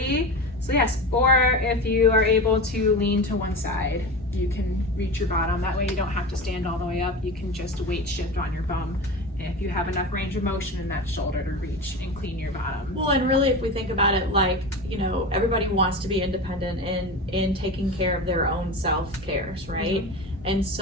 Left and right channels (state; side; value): normal; both; correlation 0.27